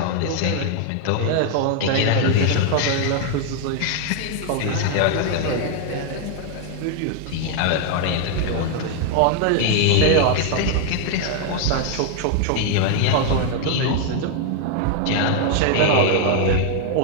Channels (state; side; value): different; both; correlation 0.00